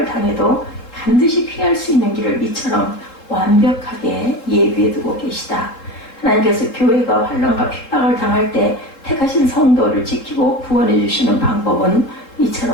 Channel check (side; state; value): right; late; 3.7 ms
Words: 당해도 반드시 피할 수 있는 길을 이처럼 완벽하게 예비해 두고 계시다. 하나님께서 교회가 환난과 핍박을 당할 때 택하신 성도를 지키고 구원해 주시는 방법은